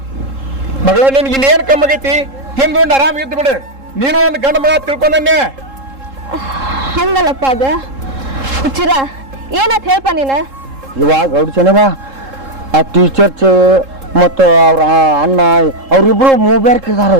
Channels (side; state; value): left; late; 3.7 ms